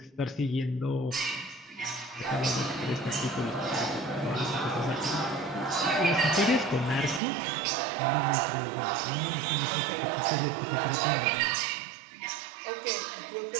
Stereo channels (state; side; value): drops out; left; at 7.2 s